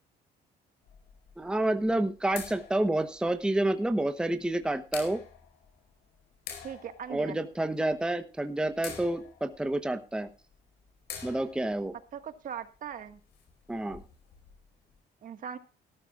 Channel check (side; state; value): both; normal; correlation 0.92